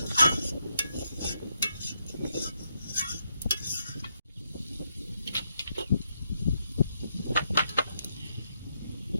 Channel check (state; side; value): inverted; both; correlation -0.79